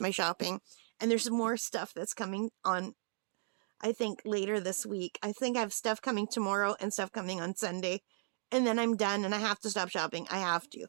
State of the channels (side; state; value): left; silent; digital silence